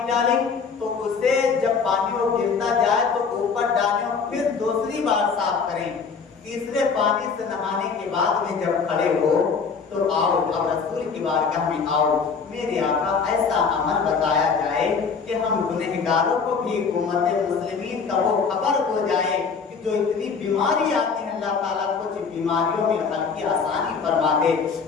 डालें तो उसे जब पानी वो गिरता जाए तो ऊपर डालें और फिर दूसरी बार साफ करें। तीसरे पानी से नहाने के बाद में जब खड़े हो तो आओ, अब रसूल की बारगाह में आओ, मेरे आका ऐसा अमल बताया जाए कि हम गुनहगारों को भी उम्मत मुस्लिमीन का वो खबर हो जाए कि जो इतनी बीमारी आती है, अल्लाह ताला कुछ बीमारियों में हल्की आसानी फरमा दे।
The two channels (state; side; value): quieter; right; 5.5 dB